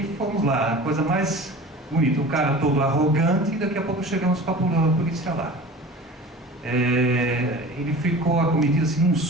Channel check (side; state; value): both; normal; correlation 0.39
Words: fomos lá, a coisa mais bonita, o cara todo arrogante, e daqui a pouco chegamos com a polícia lá. Ele ficou acometido assim, num